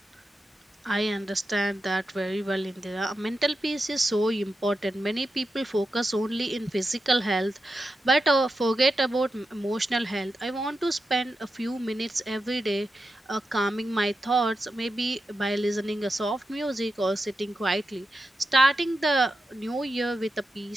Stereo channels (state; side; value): normal; both; correlation 0.89